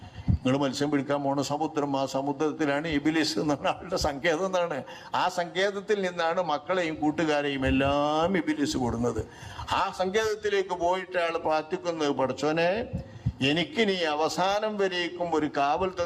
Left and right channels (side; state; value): both; identical; correlation 1.00